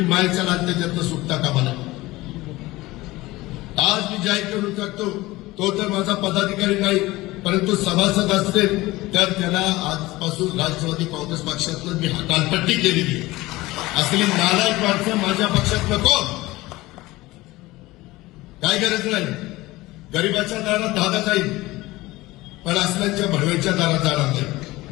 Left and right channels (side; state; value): right; quieter; 19.4 dB